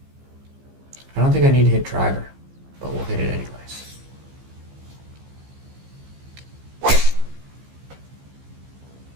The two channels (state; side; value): late; left; 15 ms